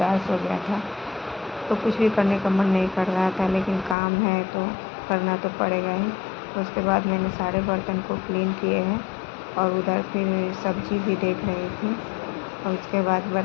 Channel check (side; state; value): right; drops out; at 4.0 s